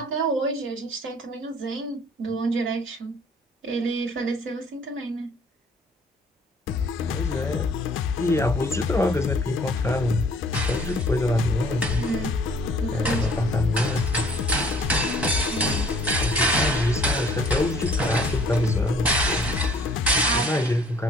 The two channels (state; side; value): normal; both; correlation 0.56